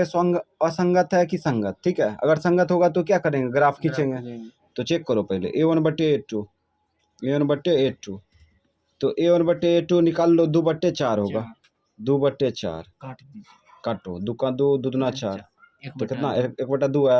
है कि संगत। ठीक है, अगर संगत होगा तो क्या करेंगे, ग्राफ खींचेंगे। तो चेक करो पहले A1/A2, A1/A2, तो A1/A2 निकाल लो, 2/4 होगा, 2/4 काटो, 2 का 2, 2 दूना 4, तो कितना 1/2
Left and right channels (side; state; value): both; identical; correlation 1.00